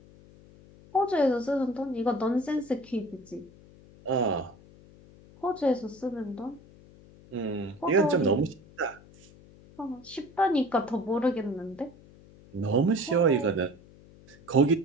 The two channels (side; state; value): left; noise; hum, 23 dB below the sound